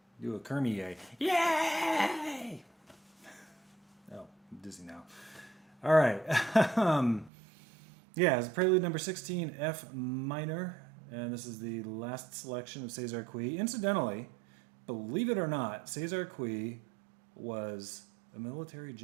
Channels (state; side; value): drops out; left; at 7.3 s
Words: Do a Kermie yay! Yay! Oh, I'm dizzy now. All right. Yeah, it's Prelude number 16, F minor. And this is the last selection of César Cui. Incidentally, believe it or not, César Cui was a military